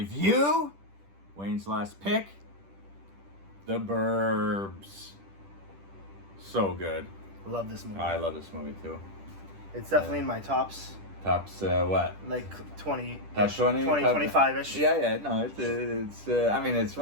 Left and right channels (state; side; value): late; left; 10 ms